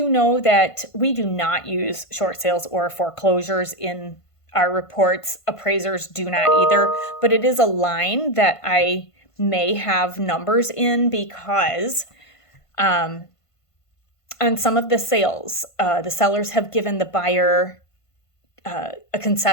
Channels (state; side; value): late; right; 1.5 ms